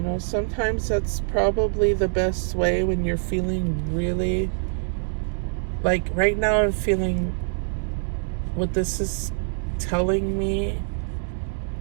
know, sometimes that's probably the best way when you're feeling really, like right now I'm feeling, what this is telling me,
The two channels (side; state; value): left; silent; digital silence